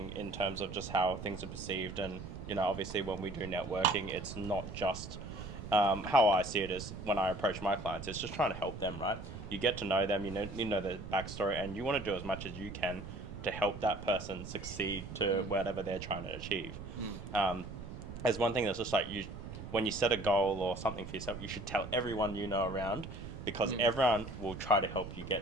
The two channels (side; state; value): right; noise; rumble, 10 dB below the sound